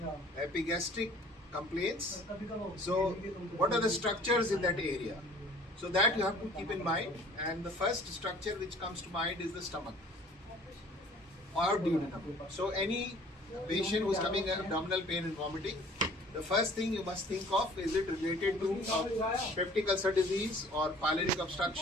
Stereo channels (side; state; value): both; normal; correlation 0.51